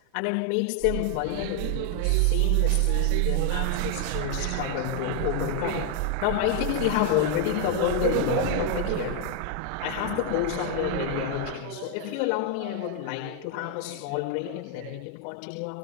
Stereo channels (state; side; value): different; both; correlation 0.00